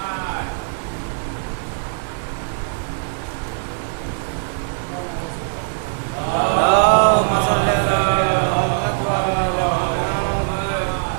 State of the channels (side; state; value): left; silent; digital silence